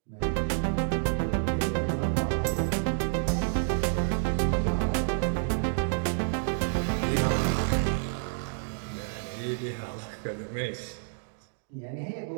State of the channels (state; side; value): silent; left; digital silence